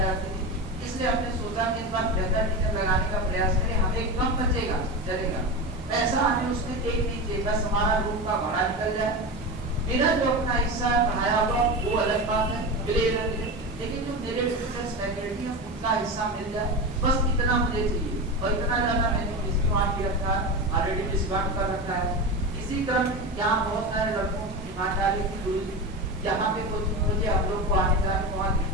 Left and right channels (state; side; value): normal; both; correlation 0.22